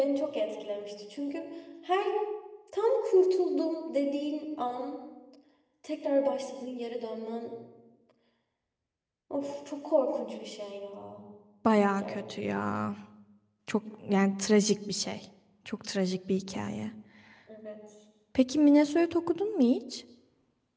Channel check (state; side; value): identical; both; correlation 1.00